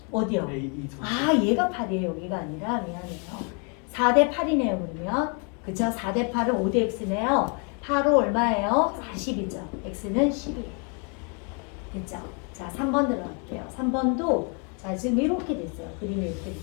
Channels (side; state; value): right; quieter; 37.2 dB